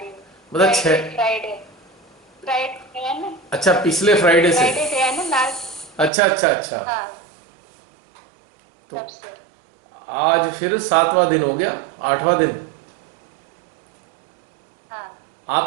हूँ। मतलब फ्राइडे 6। फ्राइडे फ्राइडे है ना, अच्छा, पिछले फ्राइडे से। फ्राइडे है ना लास्ट। अच्छा अच्छा अच्छा। हाँ तो तब से। आज फिर 7वां दिन हो गया, 8वां दिन। हाँ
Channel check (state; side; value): drops out; left; at 6.1 s